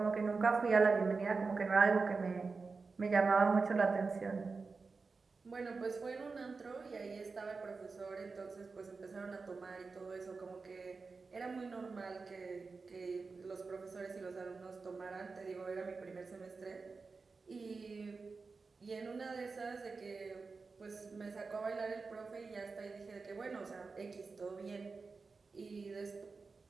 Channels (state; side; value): quieter; left; 4.4 dB